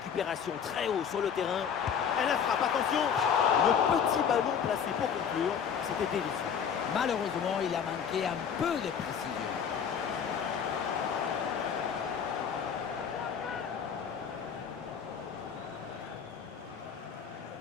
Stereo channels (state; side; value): quieter; right; 7.4 dB